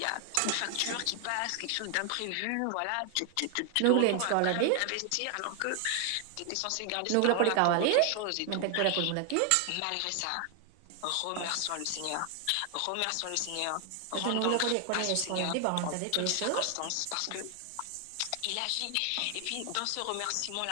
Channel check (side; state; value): both; different; correlation 0.00